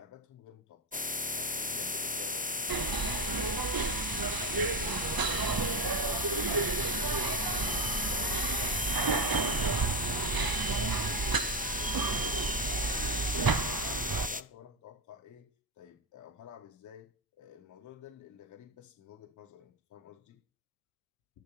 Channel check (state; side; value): normal; both; correlation 0.12